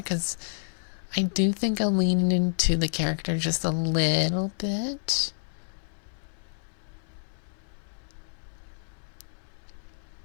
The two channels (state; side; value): silent; right; 59 dB below the other